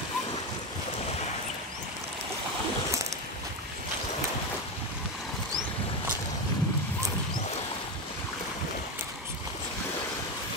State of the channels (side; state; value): both; normal; correlation 0.14